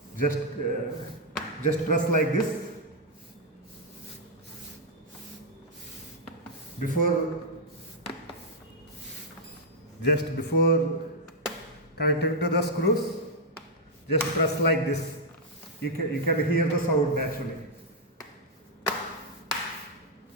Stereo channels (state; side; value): normal; both; correlation -0.03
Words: press like this. Before connecting to the screws, just press like this. You can hear the sound actually.